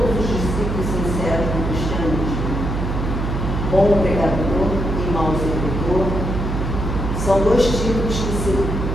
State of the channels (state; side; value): noise; right; hum, 2 dB below the sound